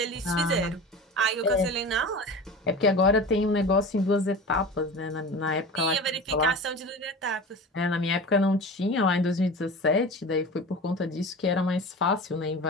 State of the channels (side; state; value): both; normal; correlation 0.34